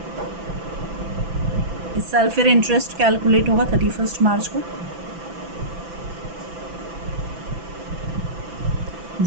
इस साल फिर इंटरेस्ट कैलकुलेट होगा 31 मार्च को,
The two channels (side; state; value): left; late; 6.0 ms